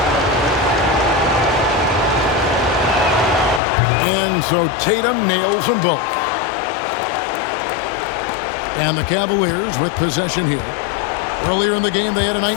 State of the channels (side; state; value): right; drops out; at 3.6 s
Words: And so Tatum nails them both. And the Cavaliers with possession here. Earlier in the game, they had a